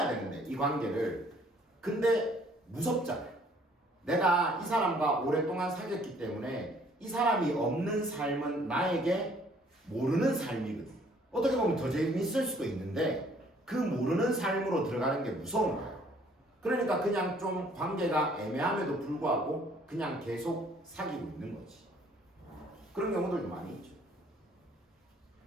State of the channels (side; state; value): both; normal; correlation 0.60